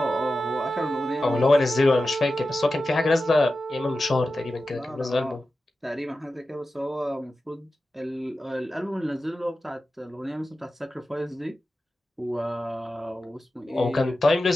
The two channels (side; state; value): both; normal; correlation 0.93